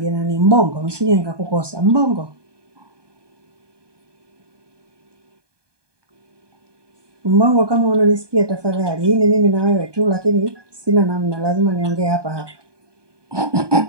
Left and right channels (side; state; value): left; late; 1.2 ms